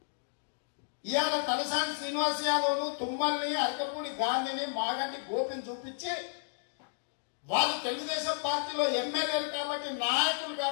ఇవాళ తలసాని శ్రీనివాస్ యాదవ్ను, తుమ్మల్ని, అరకపూడి గాంధీని, మాగంటి గోపిని చూపించి వాళ్ళు తెలుగుదేశం పార్టీలో ఎమ్మెల్యేలు కాబట్టి, నాయకులు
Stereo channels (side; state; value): right; silent; digital silence